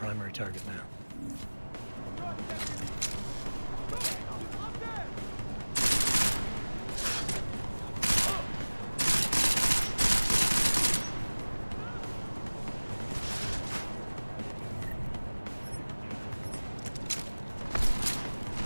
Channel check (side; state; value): both; inverted; correlation -1.00